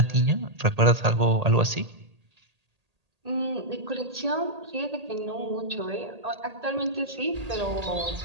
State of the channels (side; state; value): left; late; 1.8 ms